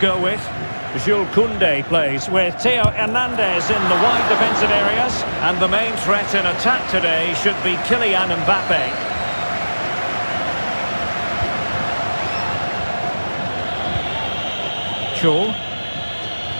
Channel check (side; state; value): both; inverted; correlation -1.00